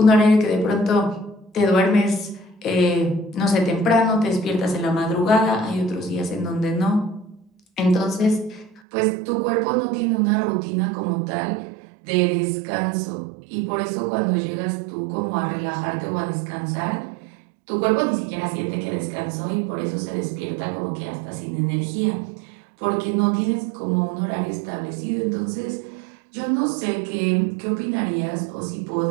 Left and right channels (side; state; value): left; drops out; at 8.8 s